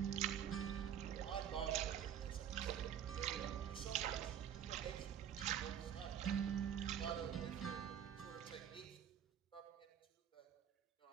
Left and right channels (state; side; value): quieter; left; 9.3 dB